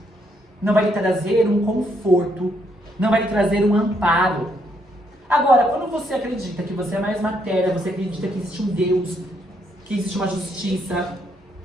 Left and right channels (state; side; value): normal; both; correlation 0.74